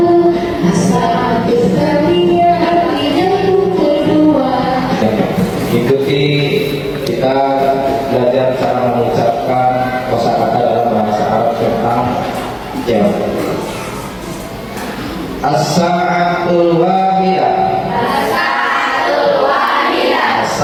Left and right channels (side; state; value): both; identical; correlation 1.00